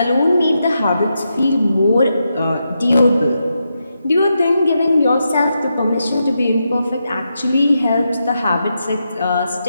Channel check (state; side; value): inverted; both; correlation -0.85